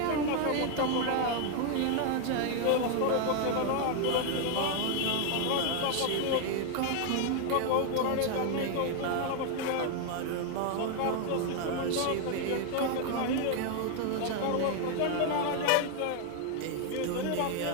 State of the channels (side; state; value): both; different; correlation 0.01